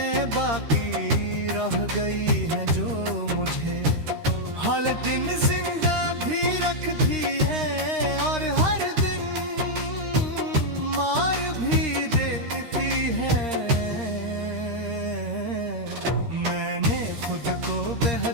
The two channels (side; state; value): left; late; 13 ms